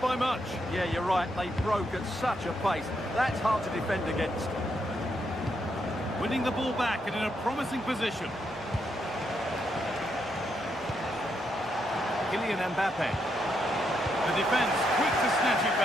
much. Yeah, you're right. They broke at such a pace. That's hard to defend against. Winning the ball back and in a promising position. Kylian Mbappe. The defence quick to snatch it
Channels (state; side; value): normal; both; correlation 0.79